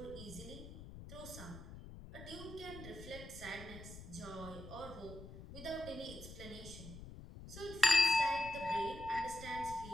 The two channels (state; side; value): noise; left; rumble, 13 dB below the sound